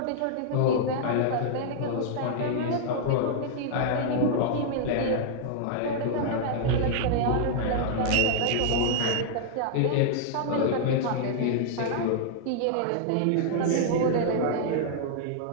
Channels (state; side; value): different; both; correlation -0.01